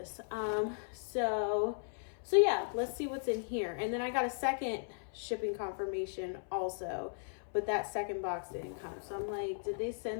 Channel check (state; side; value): silent; right; 53 dB below the other